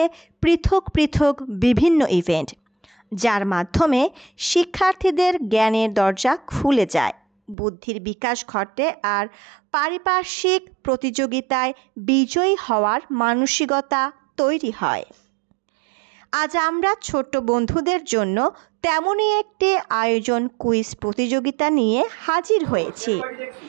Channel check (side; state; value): left; drops out; at 7.6 s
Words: পৃথক পৃথক বিভিন্ন ইভেন্ট, যার মাধ্যমে শিক্ষার্থীদের জ্ঞানের দরজা খুলে যায়, বুদ্ধির বিকাশ ঘটে আর পারিপার্শ্বিক প্রতিযোগিতায় বিজয়ী হওয়ার মানসিকতা তৈরি হয়। আজ আমরা ছোট্ট বন্ধুদের জন্য তেমনই একটি আয়োজন কুইজ প্রতিযোগিতা নিয়ে হাজির হয়েছি।